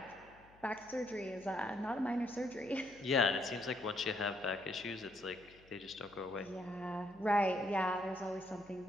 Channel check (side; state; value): left; noise; hum, 26 dB below the sound